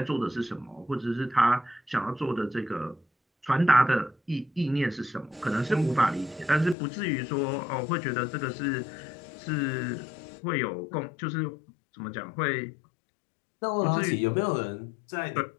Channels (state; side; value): drops out; right; at 6.8 s